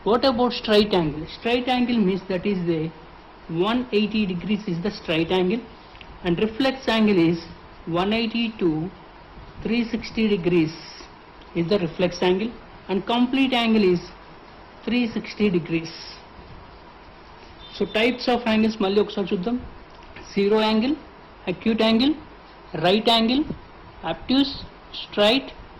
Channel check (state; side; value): identical; both; correlation 1.00